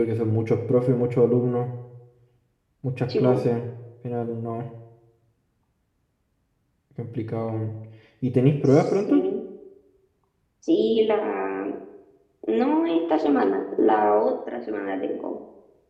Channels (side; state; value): both; identical; correlation 1.00